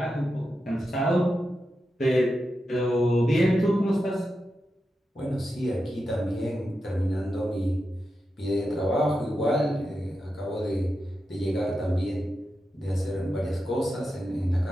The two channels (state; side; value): normal; both; correlation 0.89